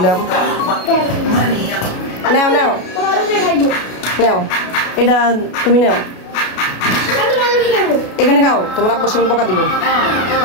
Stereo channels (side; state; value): right; late; 33 ms